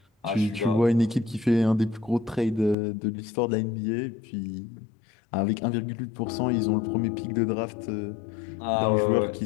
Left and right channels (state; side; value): drops out; right; at 2.8 s